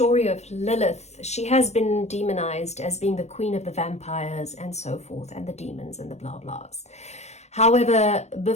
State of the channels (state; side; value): late; right; 0.32 ms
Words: of Lilith, she has been demonized as being the queen of the vampires and so forth, and the demons and the blah blahs. However,